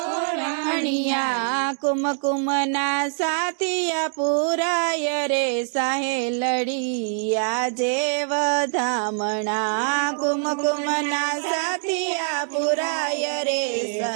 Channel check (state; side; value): silent; left; 63 dB below the other